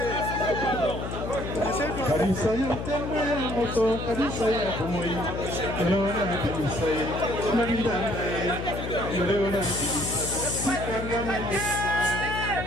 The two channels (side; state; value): left; noise; hum, 6 dB below the sound